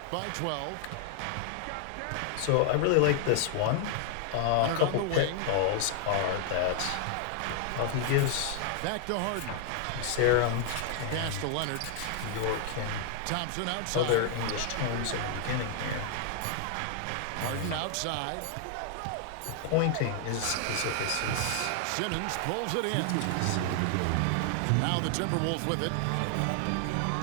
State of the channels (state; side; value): different; both; correlation 0.00